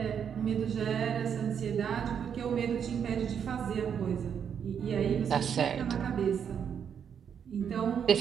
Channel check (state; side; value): quieter; left; 7.8 dB